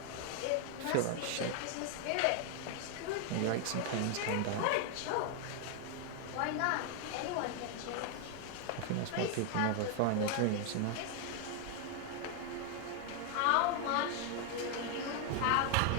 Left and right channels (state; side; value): different; both; correlation 0.00